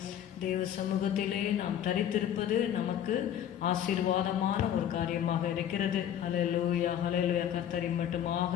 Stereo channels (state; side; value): quieter; right; 10.2 dB